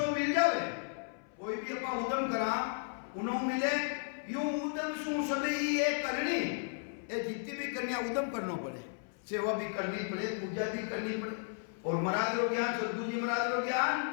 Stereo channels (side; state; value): right; silent; 55 dB below the other